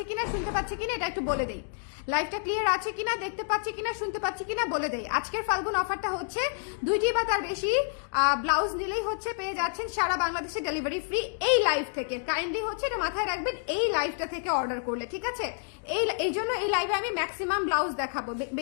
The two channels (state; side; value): silent; right; 59 dB below the other